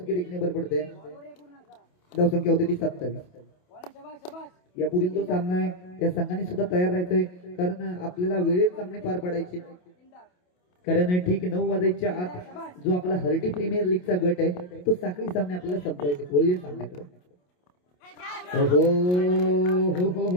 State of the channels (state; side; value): late; right; 28 ms